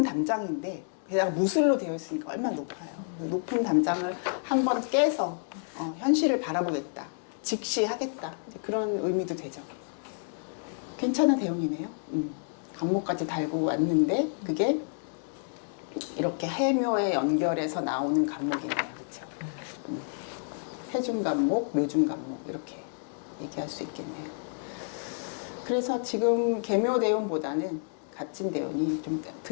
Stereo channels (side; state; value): right; silent; digital silence